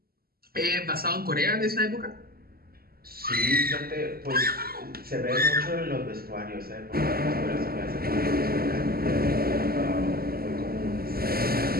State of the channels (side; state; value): left; late; 0.44 ms